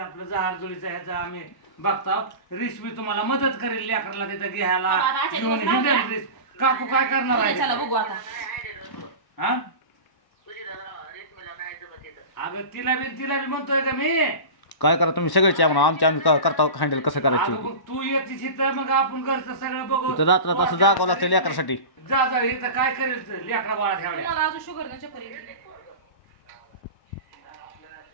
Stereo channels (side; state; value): right; late; 1.1 ms